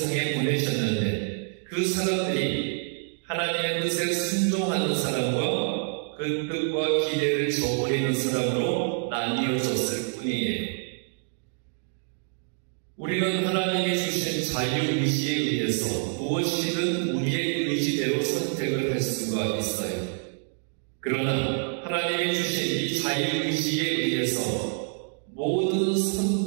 보내셨는데 그 사람들이 하나님의 뜻에 순종하는 사람과 그 뜻과 기대를 저버리는 사람으로 나뉘어졌을 뿐이에요. 우리는 하나님이 주신 자유의지에 의해서 무엇이든 우리의 의지대로 선택을 할 수가 있어요. 그러나 하나님이 주신 이 자유의지에 의해서 모든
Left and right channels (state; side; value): silent; left; 58 dB below the other